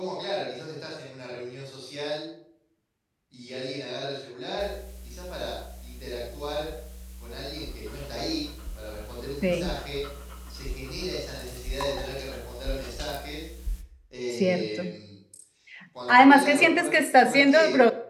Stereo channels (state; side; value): identical; both; correlation 1.00